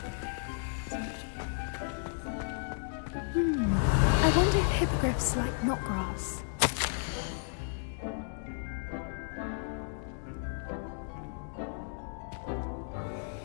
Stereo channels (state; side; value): silent; right; digital silence